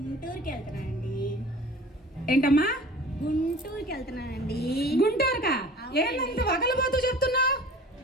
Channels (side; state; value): both; normal; correlation 0.44